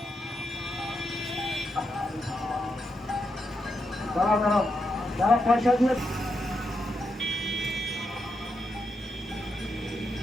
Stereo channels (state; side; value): normal; both; correlation 0.84